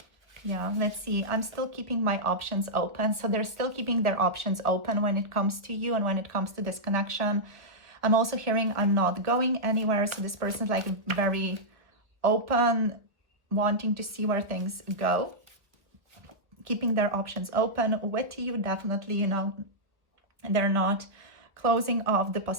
Yeah, let's see. I'm still keeping my options open. So they're still keeping their options open when it comes to you and when it comes to this connection. I'm also hearing I'm not going anywhere. So this person's like very open, wanting to see where things go, keeping their options open with you, definitely, you know, they're not closing off the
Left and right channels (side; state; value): left; late; 1.1 ms